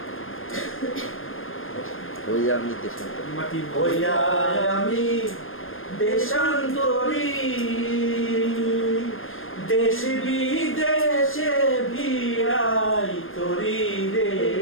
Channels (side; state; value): right; late; 0.59 ms